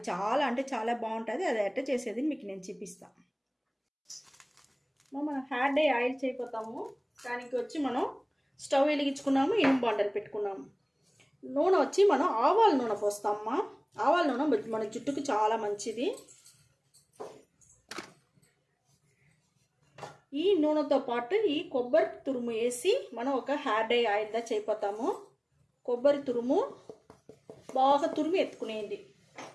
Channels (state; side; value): identical; both; correlation 1.00